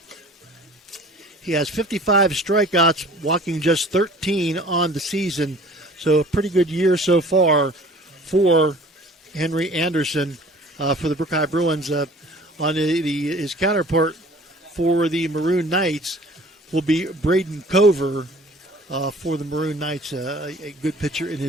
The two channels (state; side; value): normal; both; correlation 0.48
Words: He has 55 strikeouts, walking just 13 on the season. So a pretty good year so far for Henry Anderson for the Brooke High Bruins. On his counterpart for the Maroon Knights will be Braden Cover for the Maroon Knights, a good pitcher in